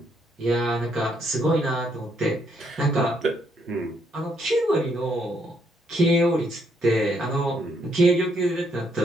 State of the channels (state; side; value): normal; both; correlation 0.72